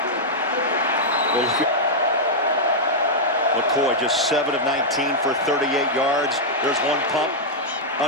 Well, McCoy just 7 of 19 for 38 yards. There's one pump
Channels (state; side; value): normal; both; correlation -0.06